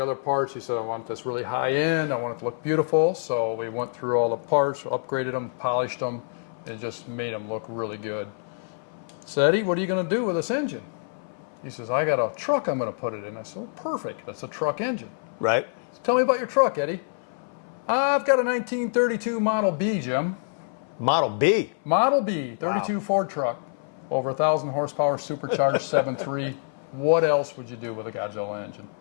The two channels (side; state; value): right; silent; 57 dB below the other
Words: other parts. He said, I want this really high end. I want it to look beautiful. So we went through all the parts, upgraded them, polished them, and just made them look really good. So Eddie, what are you going to do with this engine? He says, I got a truck I'm going to put it in. I said, well, perfect. That's a truck engine. Right. So tell me about your truck, Eddie. I've got a 1932 Model B, Jim. Model B? Model B, 32 wow. Ford truck. Over 1,000 horsepower, supercharged 7.3. What else would you do with a Godzilla engine?